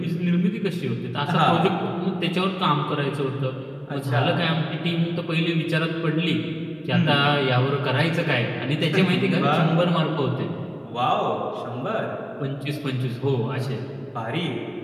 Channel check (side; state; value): both; identical; correlation 1.00